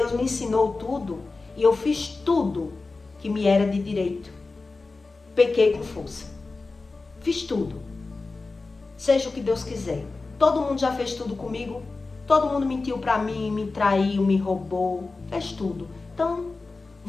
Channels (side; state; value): right; quieter; 3.7 dB